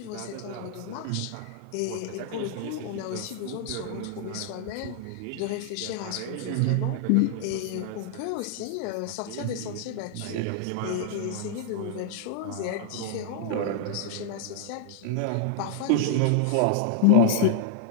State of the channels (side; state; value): both; different; correlation -0.01